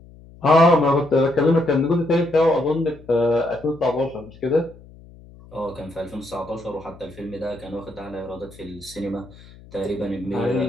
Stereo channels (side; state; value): left; noise; hum, 22 dB below the sound